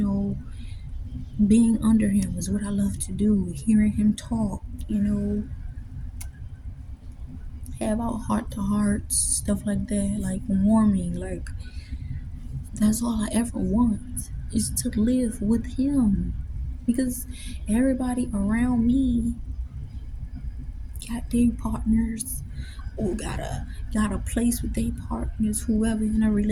Being under him is what I love to do. Hearing him talk, have our heart to hearts, stuff like that, like warming, like that's all I ever want is to live with him. Because everybody around me got their partners or got a place with their partners, whoever in a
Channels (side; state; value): both; identical; correlation 1.00